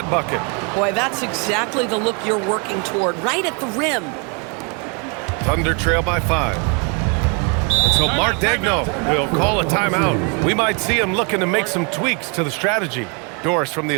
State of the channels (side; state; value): left; quieter; 34.1 dB